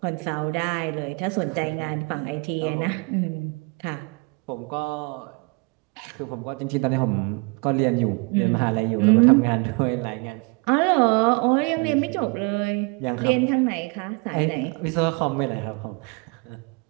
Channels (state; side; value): quieter; left; 30.5 dB